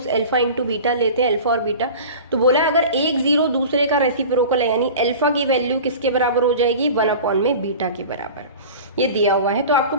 अल्फा इंटू बीटा लेते हैं, अल्फा और बीटा। तो बोला अगर एक जीरो दूसरे का रेसिप्रोकल है, यानी अल्फा की वैल्यू किसके बराबर हो जाएगी 1 अपॉन में बीटा के बराबर, ये दिया हुआ है। तो आपको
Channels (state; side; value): inverted; both; correlation -0.36